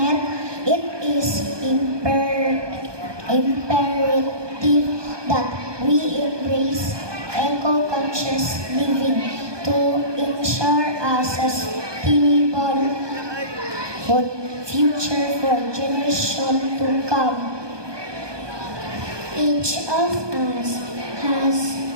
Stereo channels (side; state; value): left; late; 1.2 ms